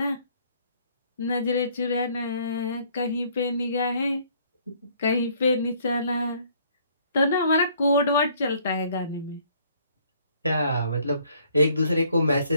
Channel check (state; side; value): inverted; both; correlation -0.62